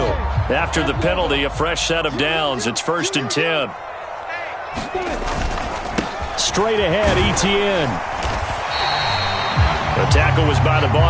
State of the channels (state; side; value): identical; both; correlation 1.00